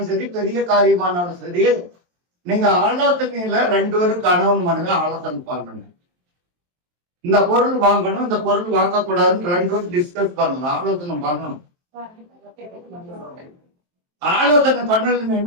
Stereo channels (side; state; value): left; late; 23 ms